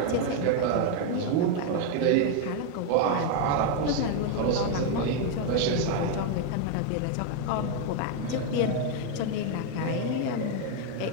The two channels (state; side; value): different; both; correlation 0.01